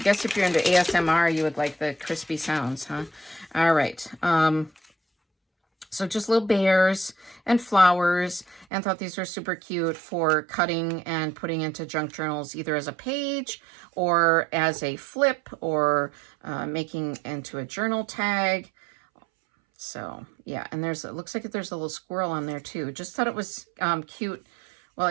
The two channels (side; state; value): left; drops out; at 8.7 s